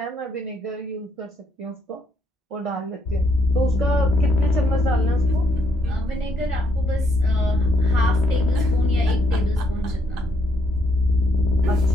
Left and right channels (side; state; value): both; normal; correlation 0.73